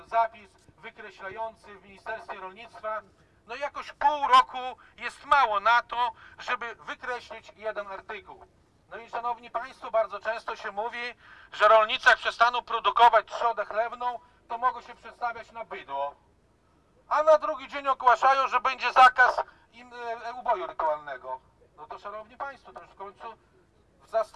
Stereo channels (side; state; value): both; identical; correlation 1.00